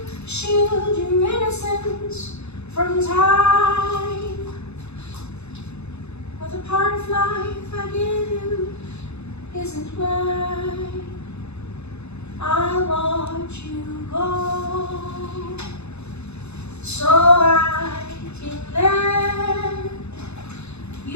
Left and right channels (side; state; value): right; late; 0.80 ms